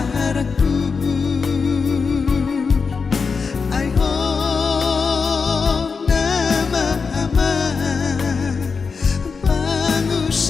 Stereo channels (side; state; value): right; quieter; 5.1 dB